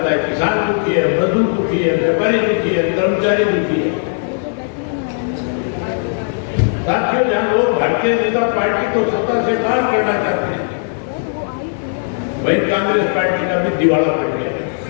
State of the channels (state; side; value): silent; right; digital silence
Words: है। किसान दुखी है, मजदूर दुखी है, व्यापारी दुखी है, कर्मचारी दुखी है। साथियों, जहां लोग भारतीय जनता पार्टी को सत्ता से बाहर करना चाहते हैं, वहीं कांग्रेस पार्टी का भी दिवाला पड़ गया।